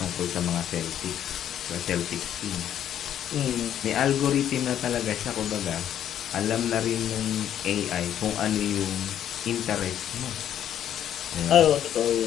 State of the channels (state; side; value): quieter; right; 10.4 dB